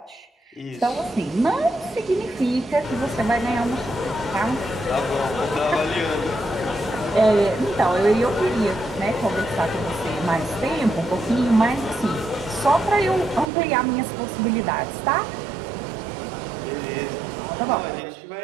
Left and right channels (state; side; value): drops out; left; at 13.5 s